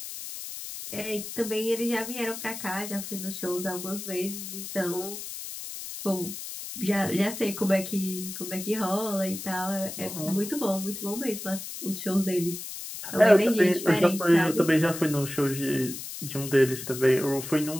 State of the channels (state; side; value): noise; left; hiss, 9 dB below the sound